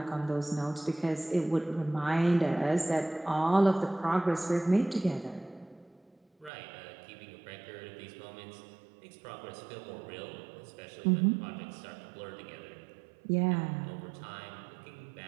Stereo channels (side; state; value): left; drops out; at 6.5 s